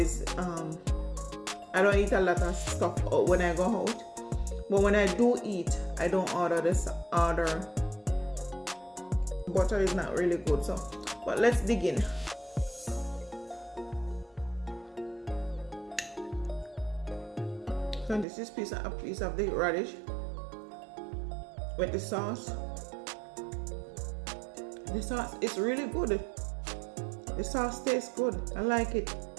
I don't eat a lot of stuff when I go out, but when I do eat, I don't order butter is not really good. So but let's dig in. So this is a piece of the radish with the sauce. The sauce is really good. The sauce tastes good. I like it.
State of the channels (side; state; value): left; drops out; at 18.2 s